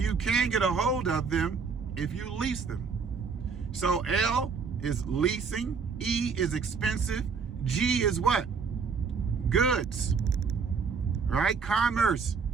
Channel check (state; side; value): quieter; left; 5.5 dB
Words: can get a hold of them if you lease them. So L is leasing, E is expensive, G is what? Goods. Right? Commerce.